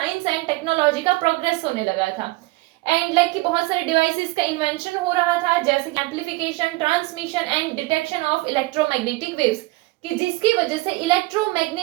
एंड टेक्नोलॉजी का प्रोग्रेस होने लगा था एंड लाइक कि बहुत सारे डिवाइसेस का इन्वेंशन हो रहा था जैसे कि amplification, transmission and detection of electromagnetic waves, कि जिसकी वजह से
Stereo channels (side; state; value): left; quieter; 21.5 dB